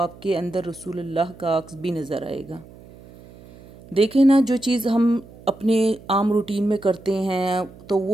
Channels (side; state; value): right; noise; hum, 21 dB below the sound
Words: کے اندر رسول اللہ کا عکس بھی نظر آئے گا۔ دیکھیں نا جو چیز ہم اپنے عام روٹین میں کرتے ہیں تو